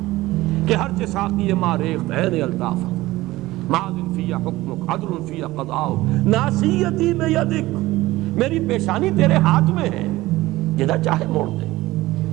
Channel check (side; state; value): left; quieter; 18.0 dB